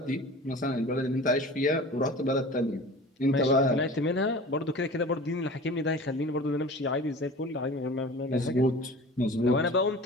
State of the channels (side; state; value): both; normal; correlation 0.39